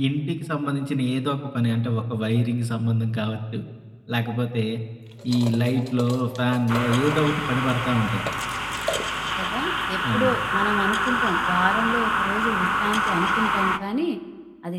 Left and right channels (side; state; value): both; identical; correlation 1.00